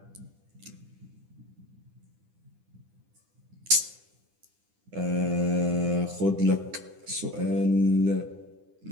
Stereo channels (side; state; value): left; late; 9.9 ms